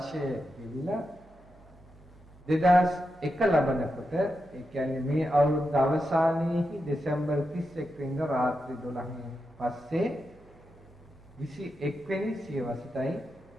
ගෙවිලා 2001 ලබනකොට ඒ කියන්නේ මේ අවුරුද්ද අවසානයේහි දෙසැම්බර් 31 වෙනිදා රාත්‍රී 12න් පස්සේ 21 වෙනි සියවසටයි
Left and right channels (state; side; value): noise; right; hum, 27 dB below the sound